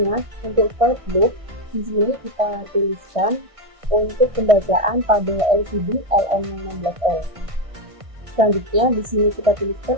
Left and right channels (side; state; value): left; late; 1.6 ms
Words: untuk for loop di sini kita tuliskan untuk pembacaan pada LCD LM16L. Selanjutnya di sini kita